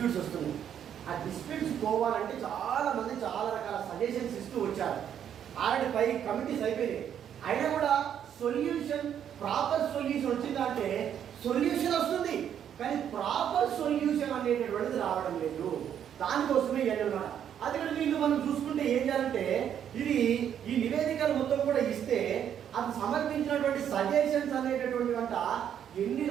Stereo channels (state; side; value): quieter; left; 9.3 dB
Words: వస్తున్నాయి. ఆ డిస్ప్యూట్స్ పోవాలంటే చాలా మంది చాలా రకాల సజెషన్స్ ఇస్తూ వచ్చారు. ఆల్రెడీ 5 కమిటీస్ అయిపోయినాయి. అయినా కూడా సొల్యూషన్, ప్రాపర్ సొల్యూషన్ వచ్చిందంటే సొల్యూషన్ వస్తుంది, కానీ ప్రాపర్ సొల్యూషన్ అనేటటువంటిది రావడం లేదు. దానికోసమే అన్నమాట. అది కూడా వీళ్ళు మనం చూసుకుంటే ఏం చేయాలంటే, ఇది ఈ నివేదికలు మొత్తం కూడా ఇస్తే అది సమర్పించినటువంటి సజెషన్స్ అనేటటువంటి వంట ఎన్ని